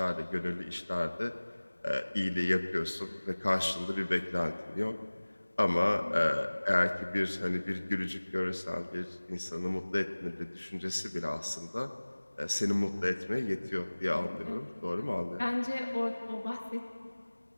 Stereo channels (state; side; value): inverted; both; correlation -1.00